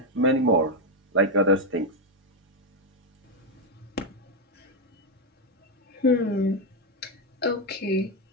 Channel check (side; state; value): both; normal; correlation 0.04